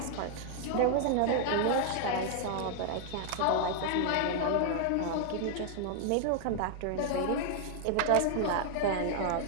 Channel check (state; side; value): different; both; correlation 0.00